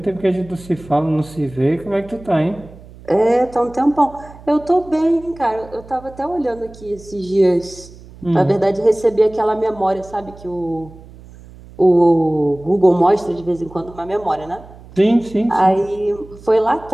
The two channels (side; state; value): right; noise; hum, 20 dB below the sound